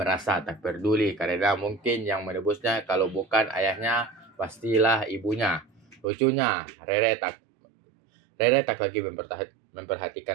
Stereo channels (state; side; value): drops out; left; at 6.1 s